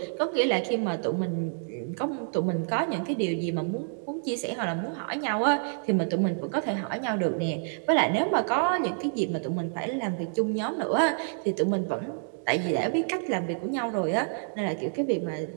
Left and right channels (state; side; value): silent; left; digital silence